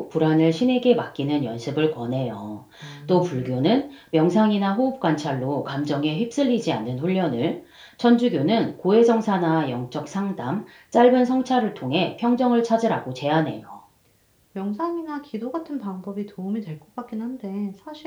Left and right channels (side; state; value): both; identical; correlation 1.00